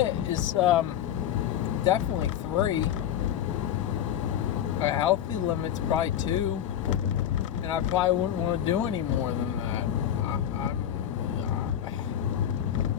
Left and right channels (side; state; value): right; quieter; 10.4 dB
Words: is definitely 3. A healthy limit's probably 2. And I probably wouldn't want to do any more than that.